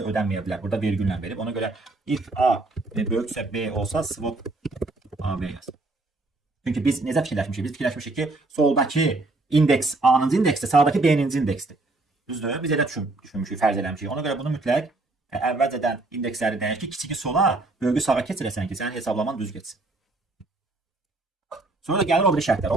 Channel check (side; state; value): left; quieter; 3.1 dB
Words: ödənməyə bilər. Burada vergüllə verib. Ona görə if A böyüksə B olsa swap AB yaz. Çünki biz necə fikirləşmişik? Biz fikirləşmişik ki, soldakı indeks A-nıncı indeksdir, sağdakı B-ninci indeksdir. Düzdür? Biz elə düşünmüşük, fərz eləmişik. Ona görə bunu mütləq əvvəlcədən indeksləri dəyək ki, kiçiki sola, böyüyü sağa keçirəsən ki, sənin hesablaman düz getsin. Sonra gəlir o biri şərtlər.